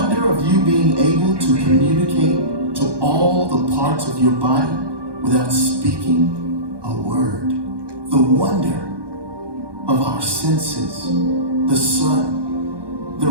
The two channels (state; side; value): late; left; 1.2 ms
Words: of you being able to communicate to all the parts of your body without speaking a word, the wonder of our senses, the sun, the